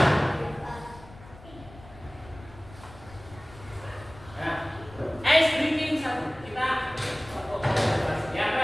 Nah, ice breaking satu. Kita tepuk konsentrasi. Yang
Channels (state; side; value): noise; left; rumble, 19 dB below the sound